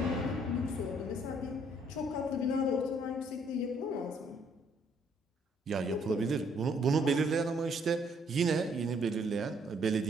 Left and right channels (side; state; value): both; normal; correlation 0.66